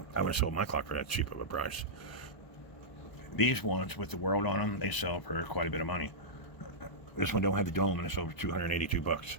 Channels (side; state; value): right; late; 1.0 ms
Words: I would have sold my clock for that cheap of a price. These ones with the world on them, they sell for quite a bit of money. This one don't have the dome, and it's over $282.